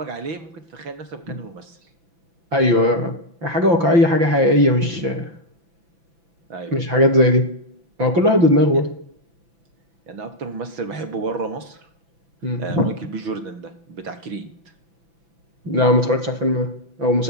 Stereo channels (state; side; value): late; left; 5.9 ms